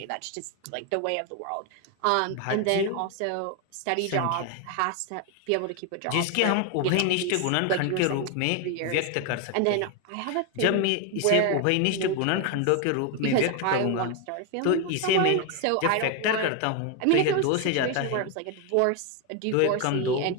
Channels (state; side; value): different; both; correlation 0.01